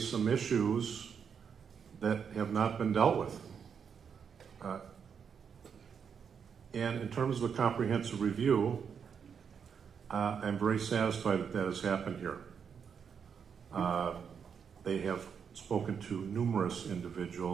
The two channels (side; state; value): left; quieter; 6.9 dB